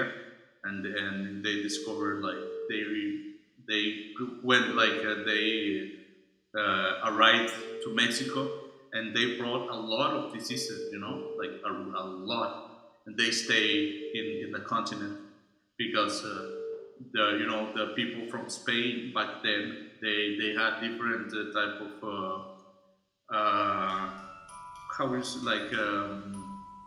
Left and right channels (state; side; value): identical; both; correlation 1.00